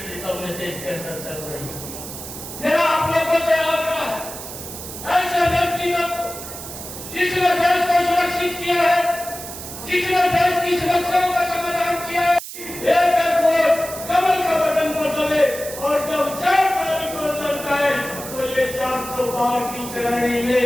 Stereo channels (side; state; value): right; noise; hiss, 11 dB below the sound